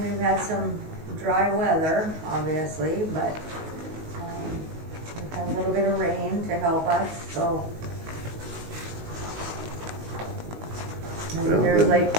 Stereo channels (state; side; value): late; left; 19 ms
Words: had some dry weather, obviously, but, we've had a little bit of rain to help us, so. And Well, there's then- like